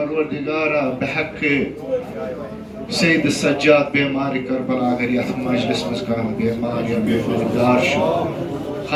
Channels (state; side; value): identical; both; correlation 1.00